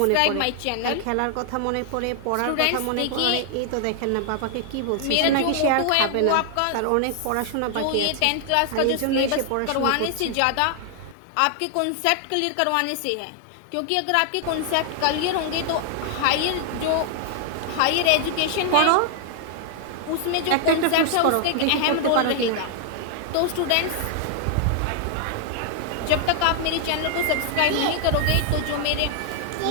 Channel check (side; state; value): both; different; correlation 0.00